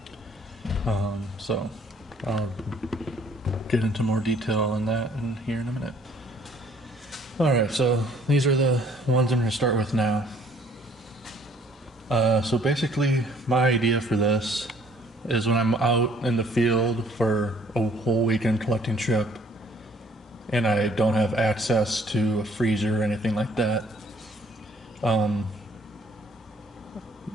So I'll get into more detail on that here in a minute. Alright, so these are the ones I'm going to start with now. So basically, my idea for this is when I'm out in the field for a whole weekend collecting trip and I don't have access to a freezer or anything like that, I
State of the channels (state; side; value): normal; both; correlation 0.60